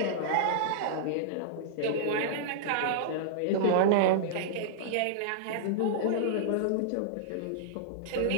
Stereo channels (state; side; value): different; both; correlation -0.02